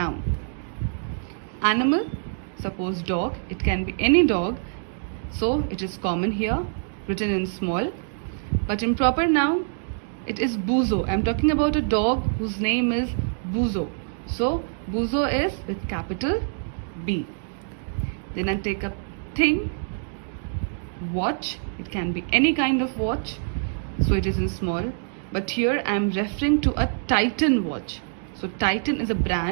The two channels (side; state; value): left; silent; digital silence